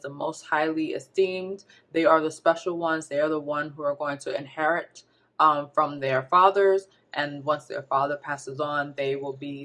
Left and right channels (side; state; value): both; identical; correlation 1.00